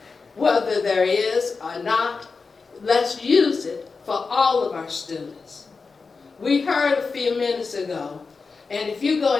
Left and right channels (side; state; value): right; quieter; 4.6 dB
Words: Whether there is or not, let's use it for all of our students. We heard a few minutes ago, and if you go